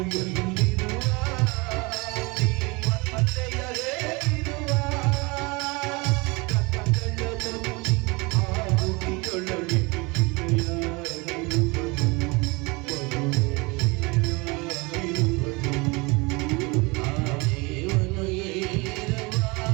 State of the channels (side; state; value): left; quieter; 26.5 dB